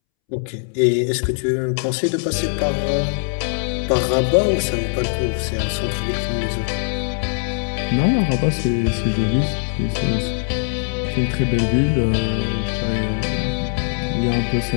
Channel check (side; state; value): right; silent; 65 dB below the other